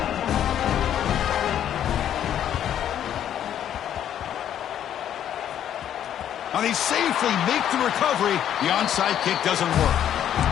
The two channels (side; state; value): right; quieter; 10.3 dB